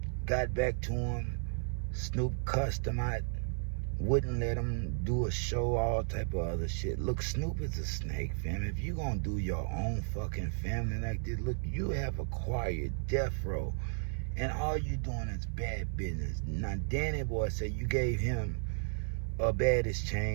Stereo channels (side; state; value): left; silent; 55 dB below the other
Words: Got back to him. Snoop cussed him out. Wouldn't let him do a show, all type of other shit. Look, Snoop is a snake, fam. If you gonna do your own fucking family like this, look, you have acquired death row, and all you doing is bad business. Now, Danny Boy said you gave him a baddest